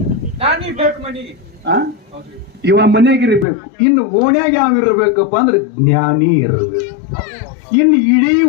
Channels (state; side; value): drops out; right; at 3.5 s